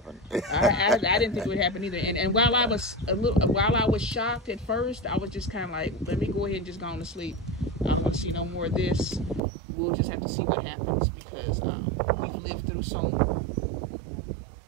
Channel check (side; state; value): left; drops out; at 9.4 s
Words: I didn't think it would happen either. And while I was shocked at first, I was just kind of like, let me go ahead and just go on to sleep. I don't want to see no more of this. We'll just have to see what happens, because we've lived through so